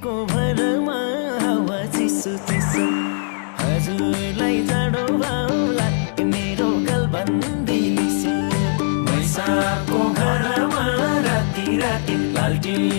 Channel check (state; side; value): silent; right; digital silence